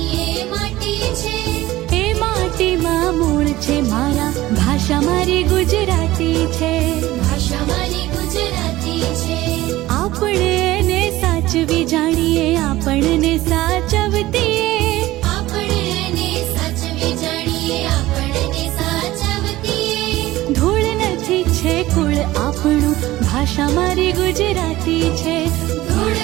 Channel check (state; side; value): quieter; left; 16.9 dB